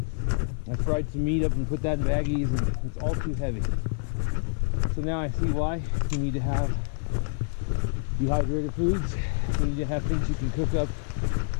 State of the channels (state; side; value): silent; right; digital silence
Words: I fried some meat up and put that in baggies, and it's all too heavy. So now I see why you need to have dehydrated foods. You need to have things you can cook up